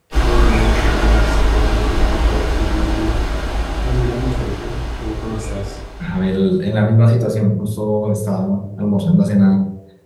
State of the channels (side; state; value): both; identical; correlation 1.00